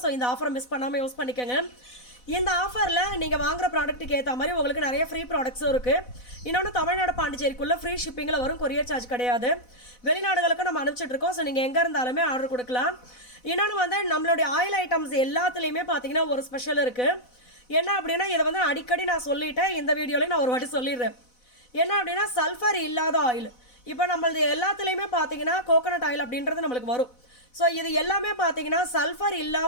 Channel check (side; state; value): right; late; 4.0 ms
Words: ஸோ இந்த ஆஃபரை மிஸ் பண்ணாமல் யூஸ் பண்ணிக்கோங்க. இந்த ஆஃபரில் நீங்கள் வாங்குற ப்ராடக்ட்டுக்கு ஏற்ற மாதிரி உங்களுக்கு நிறைய ஃப்ரீ ப்ராடக்ட்ஸும் இருக்குது. இன்னொன்று தமிழ்நாடு பாண்டிச்சேரிக்குள்ளே ஃப்ரீ ஷிப்பிங்கில் வரும், கொரியர் சார்ஜ் கிடையாது. வெளிநாடுகளுக்கு நம்ம அனுப்பிச்சிட்ருக்கோம். ஸோ நீங்கள் எங்கே இருந்தாலுமே ஆர்டர் கொடுக்கலாம். இன்னொன்று வந்து நம்மளுடைய ஆயில் ஐட்டம்ஸ் எல்லாத்துலேயுமே பார்த்தீங்கன்னா ஒரு ஸ்பெஷல் இருக்குது. என்ன அப்படின்னா இதை வந்து அடிக்கடி நான் சொல்லிட்டேன், இந்த வீடியோலையும் நான் ஒரு வாட்டி சொல்லிடுறேன். என்ன அப்படின்னா சல்ஃபர் இல்லாத ஆயில். இப்போ நம்மளது எல்லாத்துலேயுமே பார்த்தீங்கன்னா கோகோனட் ஆயில் அப்படின்றது நம்மளுக்கு வரும். ஸோ இது எல்லாமே பார்த்தீங்கன்னா சல்ஃபர்